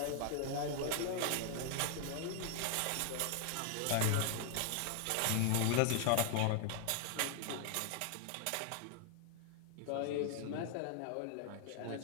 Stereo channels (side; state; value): both; different; correlation 0.00